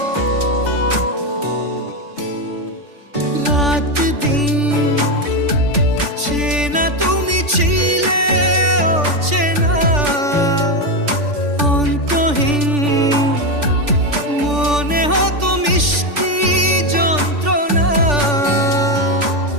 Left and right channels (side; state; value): left; late; 3.5 ms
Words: রাত দিন চেনা তুমি ছিলে চেনা, অন্তহীন মনে হতো মিষ্টি যন্ত্রণা।